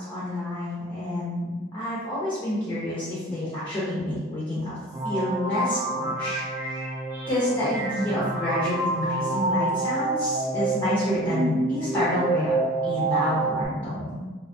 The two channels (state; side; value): normal; both; correlation 0.41